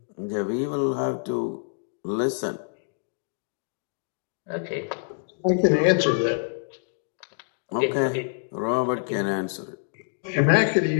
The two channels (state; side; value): silent; right; digital silence